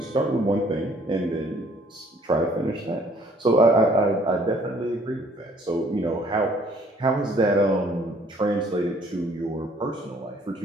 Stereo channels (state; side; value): normal; both; correlation 0.60